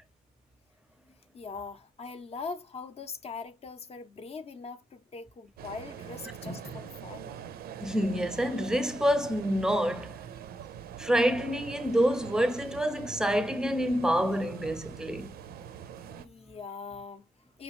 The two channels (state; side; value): normal; both; correlation 0.85